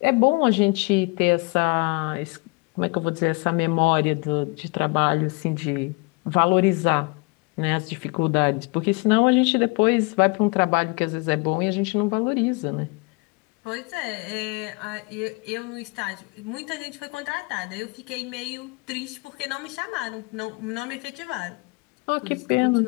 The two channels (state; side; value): quieter; right; 29.2 dB